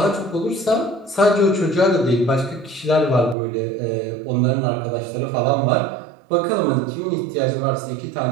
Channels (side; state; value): left; drops out; at 3.4 s